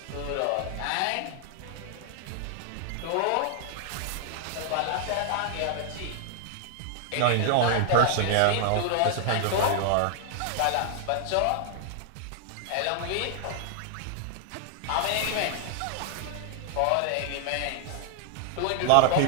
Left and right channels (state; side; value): different; both; correlation 0.00